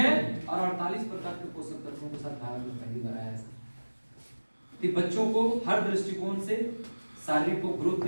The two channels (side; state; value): both; inverted; correlation -1.00